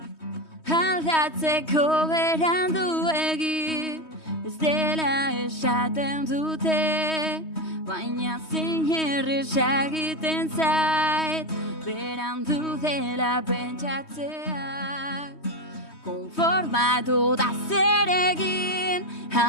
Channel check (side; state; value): right; late; 3.2 ms